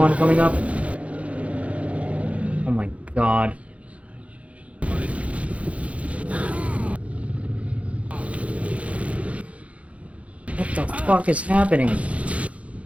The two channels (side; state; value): left; late; 0.064 ms